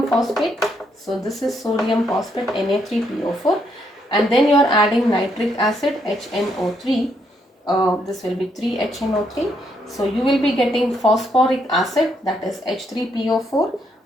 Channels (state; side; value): normal; both; correlation 0.75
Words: phosphate. So this is sodium phosphate, Na3PO4, and then you are adding nitric acid, HNO3. This will be 3HNO3. So you will be getting phosphoric acid, that is H3PO4